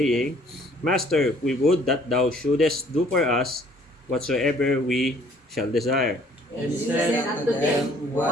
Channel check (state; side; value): normal; both; correlation 0.59